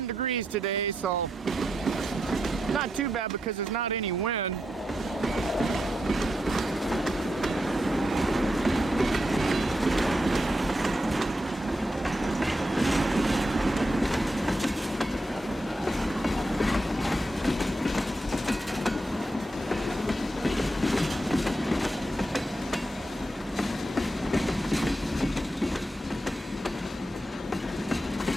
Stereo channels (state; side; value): normal; both; correlation 0.85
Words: degrees today, so not too bad because there's not any wind.